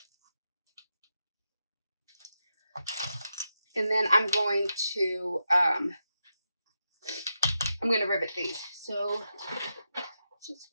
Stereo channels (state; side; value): inverted; both; correlation -0.86